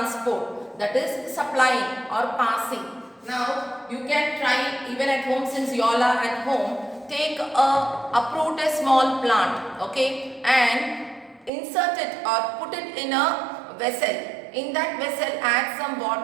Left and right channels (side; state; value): left; drops out; at 11.5 s